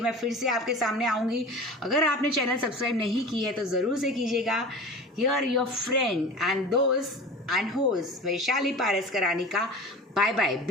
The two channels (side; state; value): both; normal; correlation 0.35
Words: फिर से आपके सामने आऊँगी। अगर आपने चैनल सब्सक्राइब नहीं की है तो ज़रूर से कीजिएगा। हियर योर फ्रेंड एंड दोस्त एंड होस्ट वैशाली पारस करानी का bye bye.